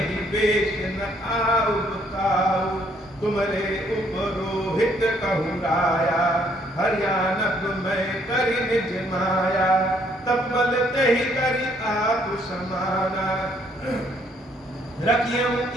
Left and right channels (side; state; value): both; normal; correlation 0.67